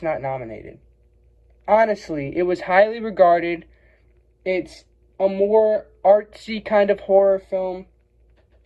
not nominated? Honestly, it was highly regarded. It's a more artsy kind of horror film.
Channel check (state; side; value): identical; both; correlation 1.00